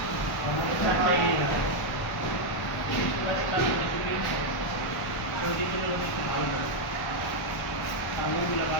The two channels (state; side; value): late; right; 1.0 ms